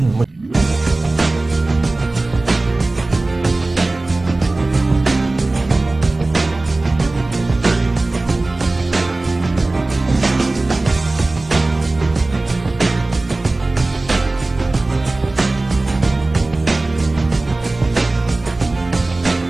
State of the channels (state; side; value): quieter; left; 3.0 dB